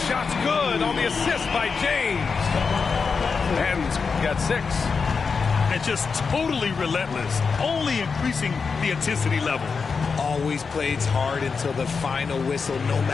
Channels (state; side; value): quieter; right; 5.2 dB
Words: shot's good on the assist by James. And got 6. And just totally relentless, only increasing the intensity level. Always plays hard until the final whistle, no